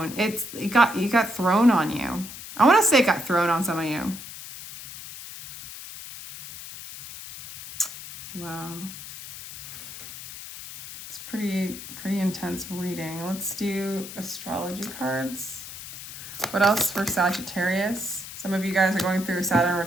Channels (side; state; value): left; noise; hiss, 12 dB below the sound